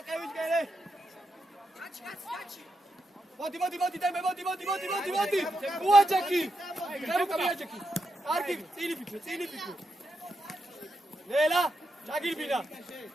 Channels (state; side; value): normal; both; correlation 0.84